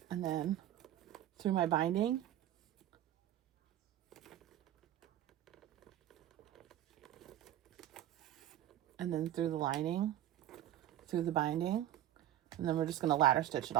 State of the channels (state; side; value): quieter; left; 12.4 dB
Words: And then through my binding, and then through the lining, through the binding, and then we're just going to ladder stitch it